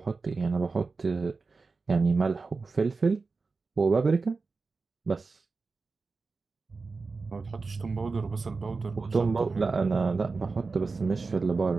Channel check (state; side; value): quieter; left; 4.2 dB